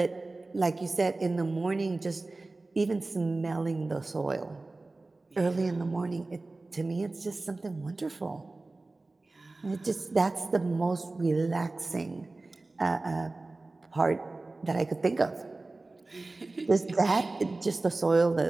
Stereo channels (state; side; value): quieter; left; 3.2 dB